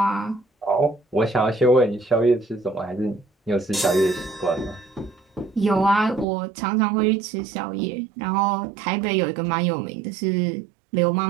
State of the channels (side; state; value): left; drops out; at 6.2 s